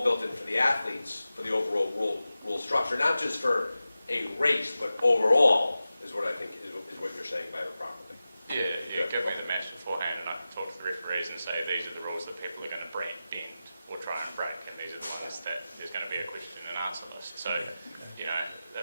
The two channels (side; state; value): both; inverted; correlation -0.94